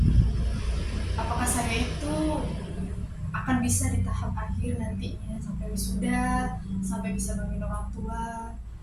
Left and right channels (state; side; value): identical; both; correlation 1.00